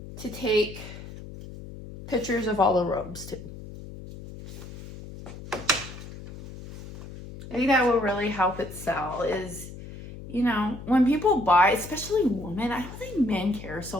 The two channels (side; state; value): left; noise; hum, 13 dB below the sound